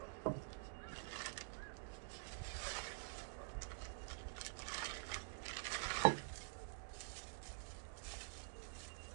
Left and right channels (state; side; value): silent; left; digital silence